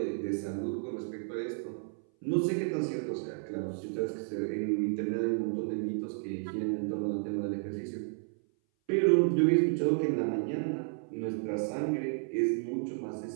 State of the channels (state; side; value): silent; left; 56 dB below the other